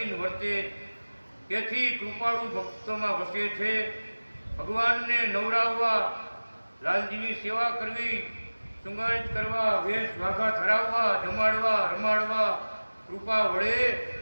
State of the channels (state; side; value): inverted; both; correlation -1.00